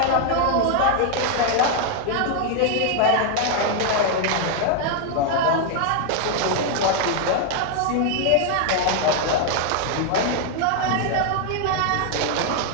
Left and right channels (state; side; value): different; both; correlation 0.00